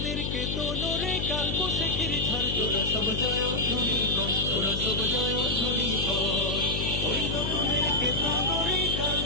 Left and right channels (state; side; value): noise; left; hum, 3 dB below the sound